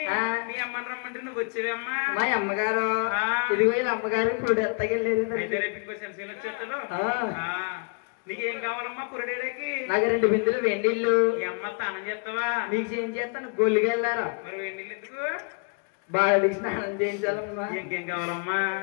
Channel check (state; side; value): quieter; right; 38.5 dB